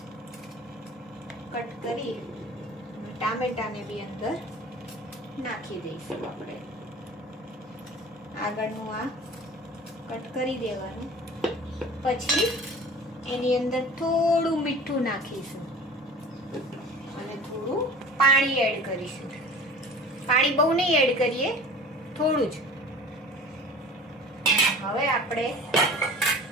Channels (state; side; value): normal; both; correlation 0.42